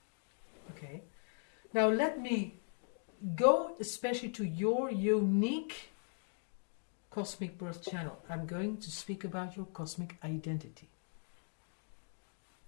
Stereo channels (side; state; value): right; silent; 52 dB below the other